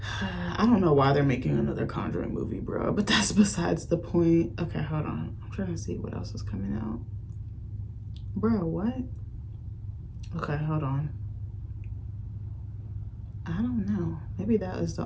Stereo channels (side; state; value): both; identical; correlation 1.00